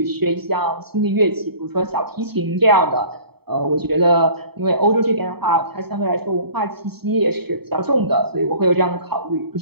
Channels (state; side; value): late; left; 0.97 ms